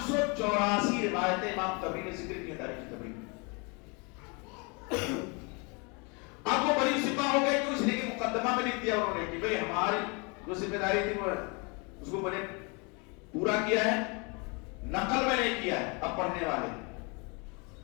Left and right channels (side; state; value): right; quieter; 31.3 dB